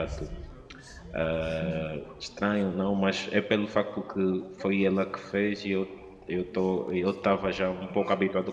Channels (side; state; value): both; identical; correlation 1.00